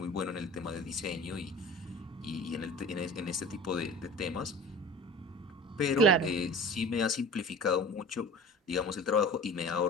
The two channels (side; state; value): both; normal; correlation 0.39